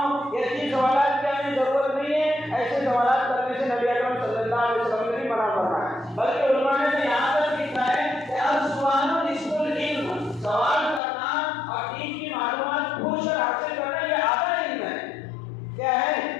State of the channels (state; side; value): drops out; right; at 11.0 s